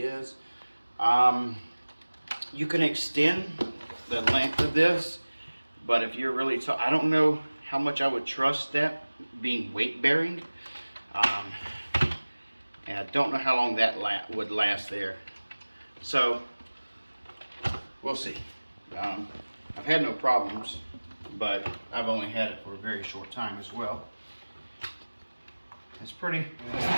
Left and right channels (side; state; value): both; inverted; correlation -1.00